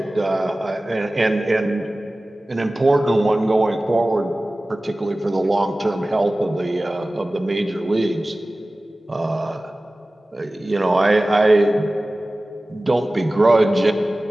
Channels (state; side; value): normal; both; correlation 0.97